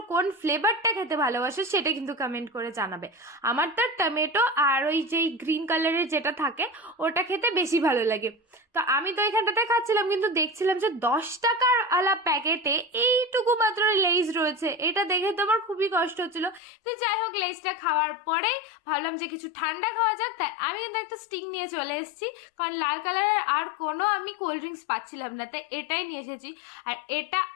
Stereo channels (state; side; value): drops out; right; at 16.6 s